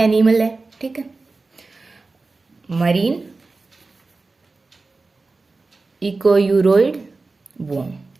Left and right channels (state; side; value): quieter; left; 3.7 dB